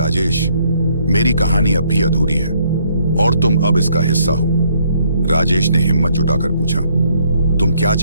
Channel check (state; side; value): inverted; both; correlation -0.68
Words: मेरी कहानी अब भी अधूरी है और तुम अब इसका हिस्सा हो। राजेश ने हिम्मत जुटाकर पूछा, तुम क्या